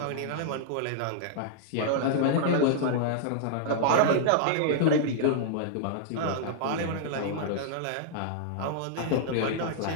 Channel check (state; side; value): different; both; correlation -0.01